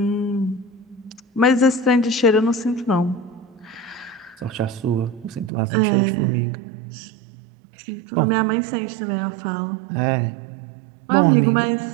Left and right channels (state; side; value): drops out; left; at 5.5 s